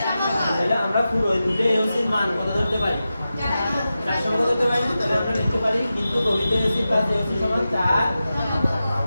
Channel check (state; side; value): inverted; both; correlation -0.92